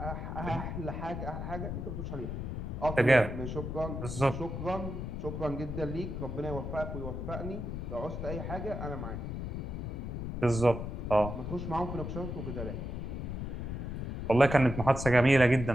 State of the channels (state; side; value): noise; left; rumble, 5 dB below the sound